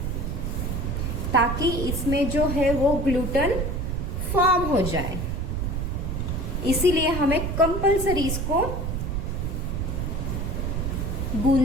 ताकि इसमें जो है वो ग्लूटेन फॉर्म हो जाए, इसीलिए हमें कंपल्सरी इसको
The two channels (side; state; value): right; noise; rumble, 1 dB below the sound